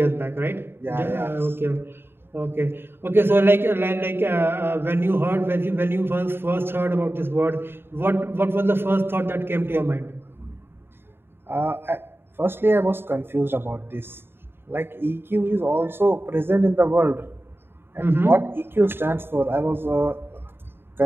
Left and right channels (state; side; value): late; left; 0.11 ms